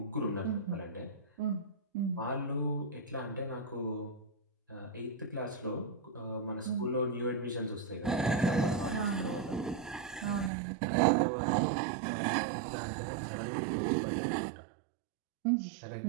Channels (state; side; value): drops out; left; at 10.5 s